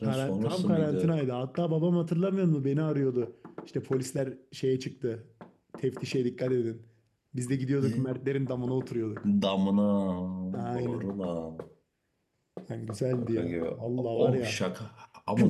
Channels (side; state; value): both; identical; correlation 1.00